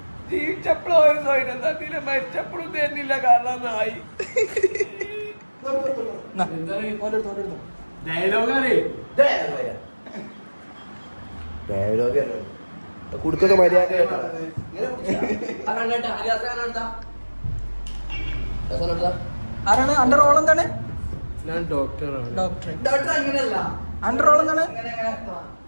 ജീവിച്ചപ്പോഴും ഒരു സ്വയം തന്നില്ല, മരിച്ചപ്പോഴും തന്നില്ല. കാരണം നായി കുടുക്കൊക്കെ മര്യാദ. ആരാണ് അന്റെ റോൾ? എന്താണ്? ഞാൻ ഡോക്ടറാണ്. ഡോക്ടർ അങ്ങനെയല്ല. അന്റെ റോൾ എന്താണ്?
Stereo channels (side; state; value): both; inverted; correlation -1.00